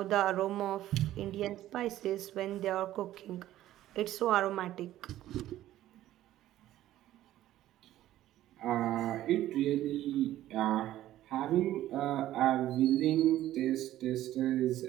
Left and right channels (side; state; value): left; quieter; 13.8 dB